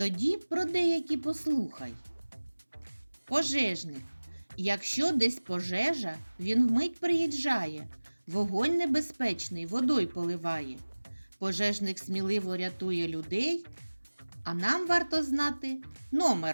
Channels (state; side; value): inverted; both; correlation -1.00